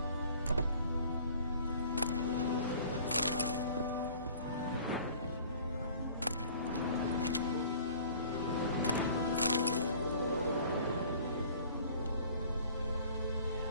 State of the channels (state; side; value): inverted; both; correlation -0.49